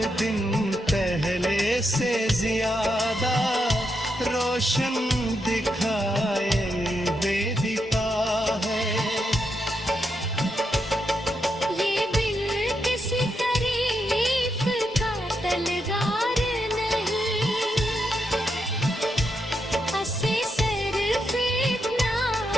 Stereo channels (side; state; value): both; normal; correlation 0.82